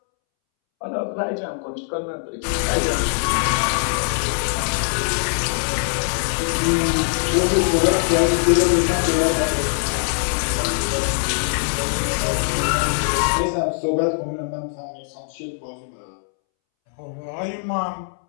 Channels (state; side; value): silent; right; 64 dB below the other